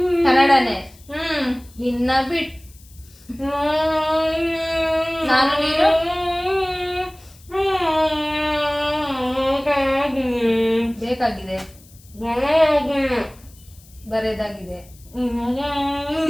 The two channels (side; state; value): left; noise; hiss, 26 dB below the sound